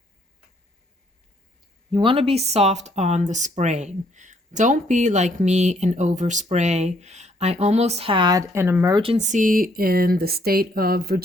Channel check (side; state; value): both; normal; correlation 0.67